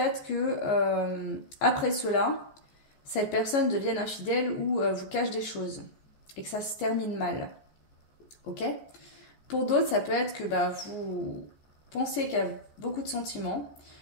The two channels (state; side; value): late; right; 14 ms